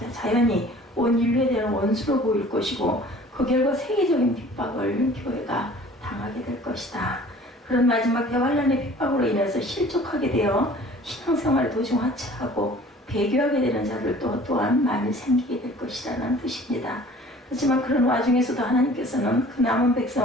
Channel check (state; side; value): normal; both; correlation 0.49